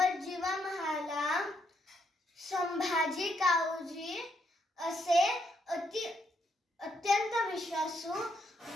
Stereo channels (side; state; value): both; normal; correlation 0.75